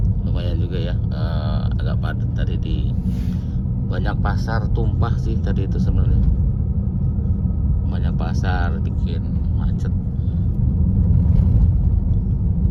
lumayan juga ya, agak padat tadi. Di banyak pasar tumpah sih tadi itu sebenarnya. Banyak pasar bikin macet.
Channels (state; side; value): identical; both; correlation 1.00